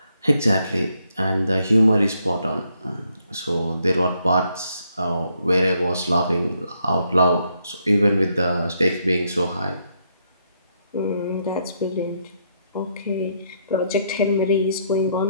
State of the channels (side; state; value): both; inverted; correlation -0.75